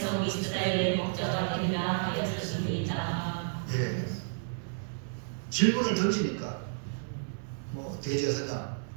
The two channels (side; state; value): left; silent; digital silence